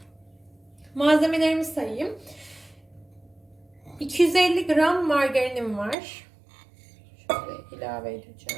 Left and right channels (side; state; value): left; drops out; at 6.0 s